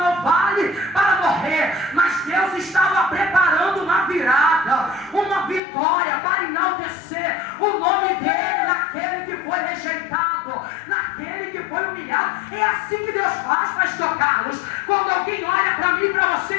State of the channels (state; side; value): drops out; right; at 5.6 s